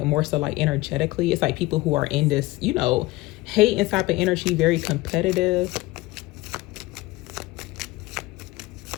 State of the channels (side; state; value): right; quieter; 19.7 dB